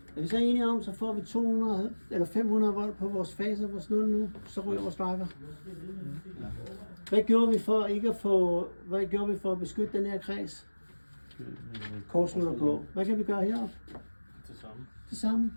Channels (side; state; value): both; inverted; correlation -1.00